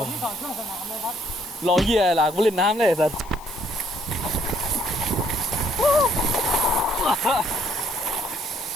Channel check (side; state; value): left; noise; hiss, 20 dB below the sound